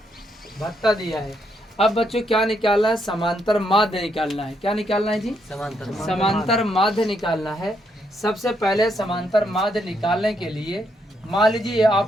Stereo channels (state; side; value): normal; both; correlation 0.76